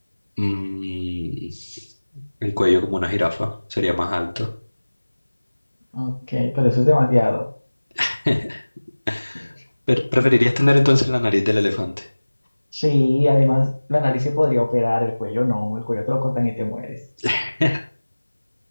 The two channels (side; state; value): both; inverted; correlation -1.00